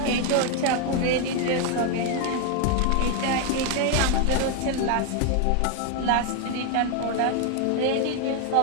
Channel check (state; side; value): different; both; correlation 0.01